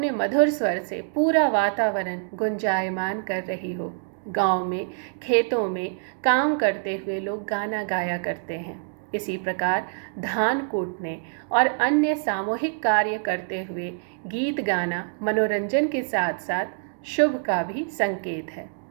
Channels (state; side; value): silent; left; digital silence